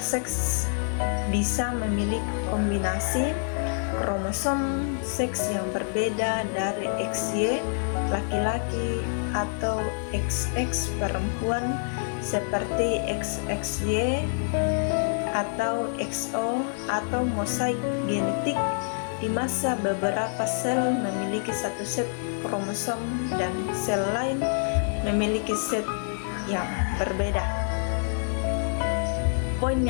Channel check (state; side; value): silent; right; 60 dB below the other